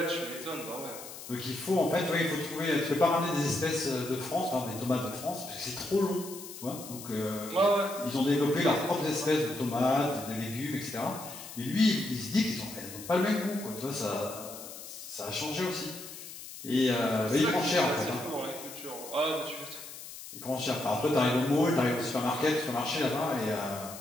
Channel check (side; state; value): left; noise; hiss, 13 dB below the sound